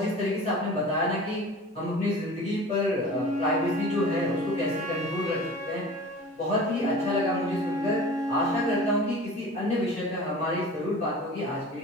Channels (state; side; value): normal; both; correlation 0.40